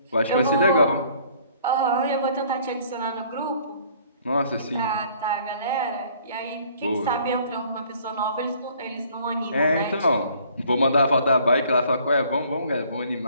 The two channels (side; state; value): both; inverted; correlation -0.58